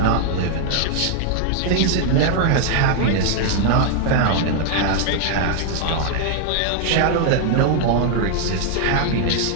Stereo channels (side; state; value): both; different; correlation 0.00